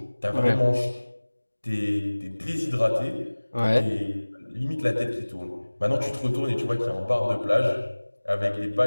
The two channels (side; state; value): both; inverted; correlation -1.00